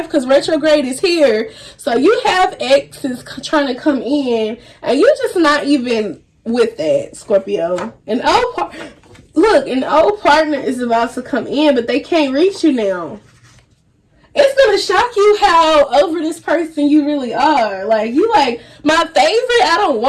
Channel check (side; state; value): both; identical; correlation 1.00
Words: because retrograde is here. So you have exes trying to come in, and you're just not even with that, Scorpio. An old partner is about to come in, but they can't reach you now. It's gonna shock you how over this person you really are. Like, you like, my favorite? I don't